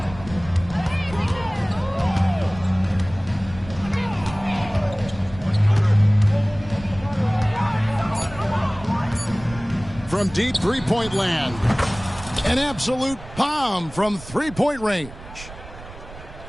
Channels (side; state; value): right; noise; rumble, 16 dB below the sound